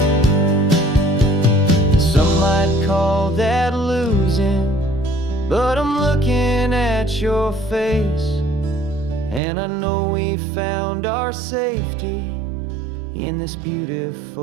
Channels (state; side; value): drops out; left; at 9.4 s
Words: Some might call that losing, but I'm looking at your face, and I know we found our safety in this